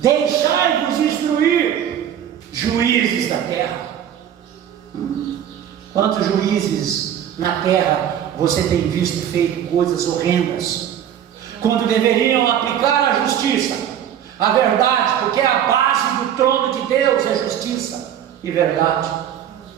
instruir, juízes da terra. Quantos juízes na terra você tem visto feito coisas horrendas, quando deveriam aplicar a justiça, a verdade, porque a base do trono de Deus é justiça e verdade,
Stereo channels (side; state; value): left; quieter; 9.9 dB